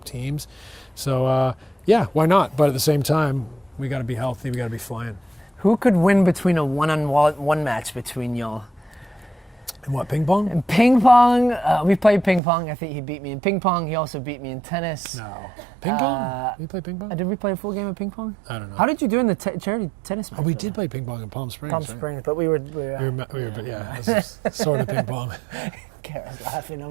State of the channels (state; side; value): drops out; left; at 12.4 s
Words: teams. So why not? But at the same time, we got to be healthy. We got to be flying. Who could win between a one-on-one match between y'all? And what, ping pong? In ping pong, we played ping pong. I think he beat me in ping pong. He also beat me in tennis. No. Ping pong? You play ping pong? Did we play a full game of ping pong? I don't know. How did you do in the charity tennis match? Oh, we did play ping pong in Palm Springs. Palm right? Springs, but we were This is sort of ping pong. Kara's laughing